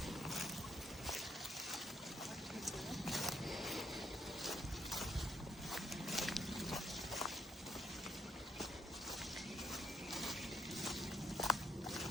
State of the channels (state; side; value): normal; both; correlation 0.75